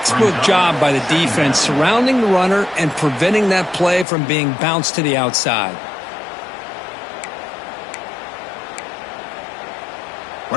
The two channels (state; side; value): drops out; right; at 4.0 s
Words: job by the defense surrounding the runner and preventing that play from being bounced to the outside.